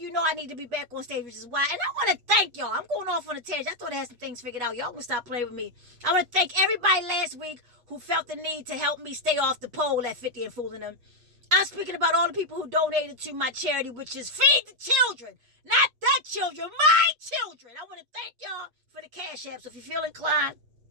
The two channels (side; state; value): left; late; 8.3 ms